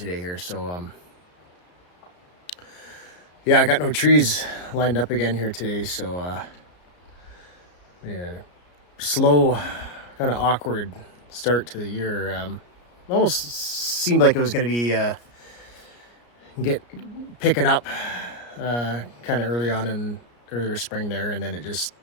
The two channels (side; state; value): right; late; 33 ms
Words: here. So yeah, I got no trees lined up again here today. So yeah, slow, kind of awkward start to the year. Almost seemed like it was going to be picking up kind of early on in earlier spring there, and then